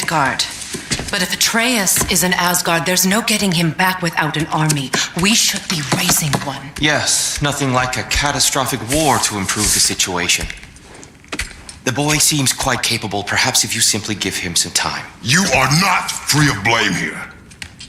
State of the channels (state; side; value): identical; both; correlation 1.00